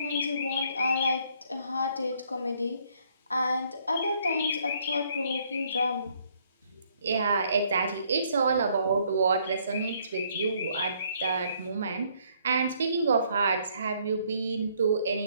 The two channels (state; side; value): inverted; both; correlation -0.66